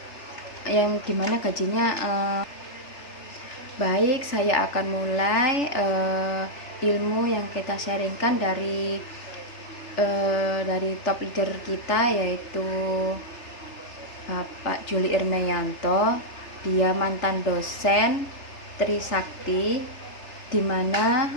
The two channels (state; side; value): late; right; 3.3 ms